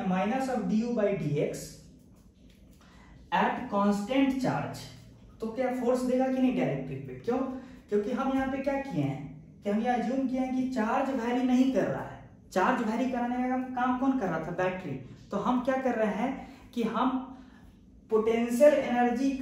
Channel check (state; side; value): identical; both; correlation 1.00